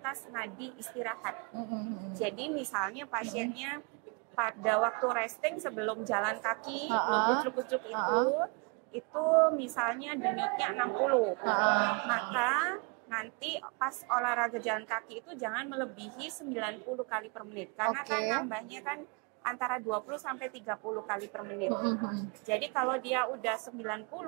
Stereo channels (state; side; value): quieter; left; 33.8 dB